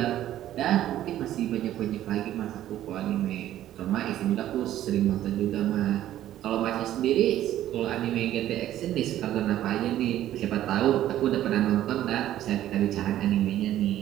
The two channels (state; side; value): quieter; left; 12.8 dB